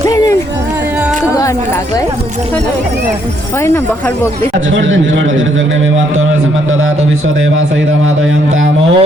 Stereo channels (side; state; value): both; normal; correlation 0.71